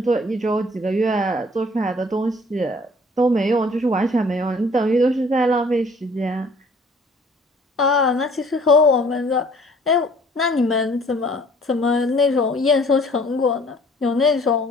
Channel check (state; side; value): normal; both; correlation 0.55